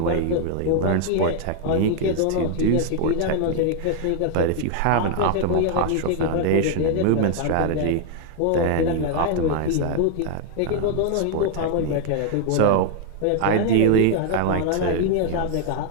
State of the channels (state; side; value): different; both; correlation 0.00